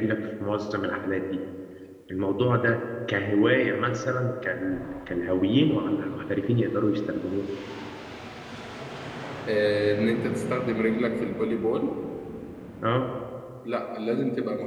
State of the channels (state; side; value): identical; both; correlation 1.00